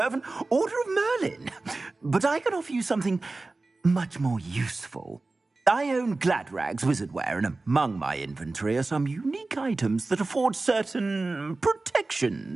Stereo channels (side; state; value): left; quieter; 3.4 dB